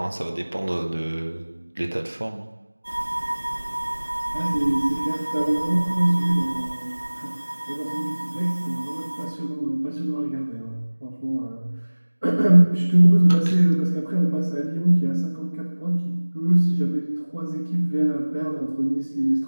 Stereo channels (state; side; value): inverted; both; correlation -1.00